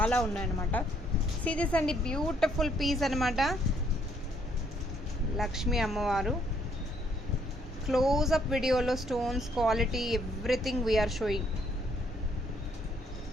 ఉన్నాయన్నమాట. సీరియస్ అండి, బ్యూటిఫుల్ పీస్ అనమాట. లక్ష్మీ అమ్మవారు. క్లోజ్అప్ వీడియోలో stones quality everything we are showing.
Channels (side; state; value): both; normal; correlation 0.68